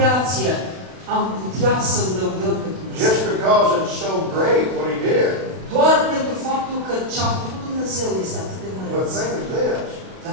am putea să-L lăudăm pe Dumnezeu. Just because it's so great what He did. Doar pentru faptul că ce a făcut Dumnezeu este atât de But măreț. think of this.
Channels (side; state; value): left; late; 32 ms